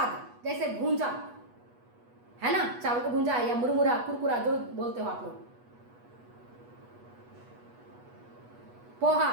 जैसे भूंजा, है ना, चावल को भूंजा या मुरमुरा, कुरकुरा जो बोलते हो आप लोग, पोहा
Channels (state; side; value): late; left; 8.2 ms